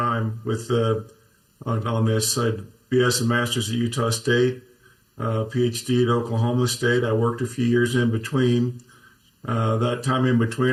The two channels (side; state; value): both; identical; correlation 1.00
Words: with on this. I had BS and Masters at Utah State, PhD at Oklahoma State. I worked a few years in between. That time in